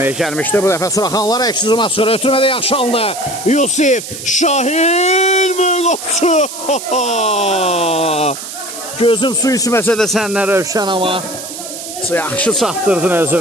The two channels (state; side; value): noise; right; hiss, 10 dB below the sound